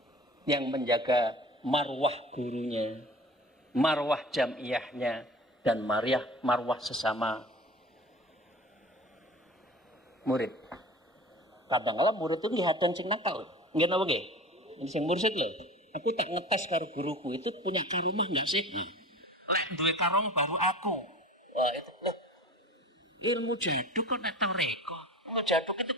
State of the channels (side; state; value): both; normal; correlation 0.38